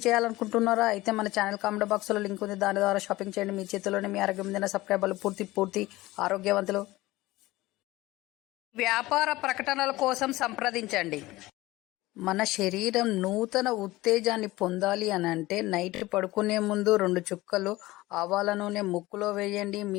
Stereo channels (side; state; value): right; quieter; 18.8 dB